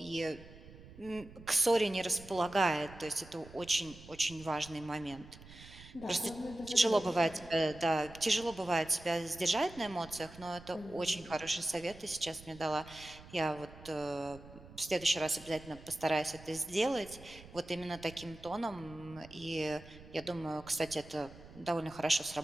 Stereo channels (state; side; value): noise; right; rumble, 18 dB below the sound